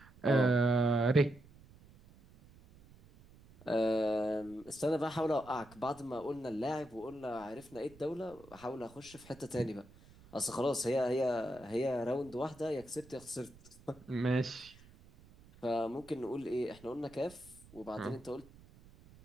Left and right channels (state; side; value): noise; right; rumble, 23 dB below the sound